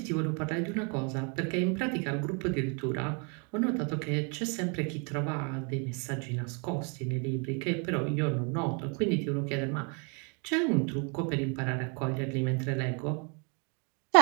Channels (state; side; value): quieter; left; 35.6 dB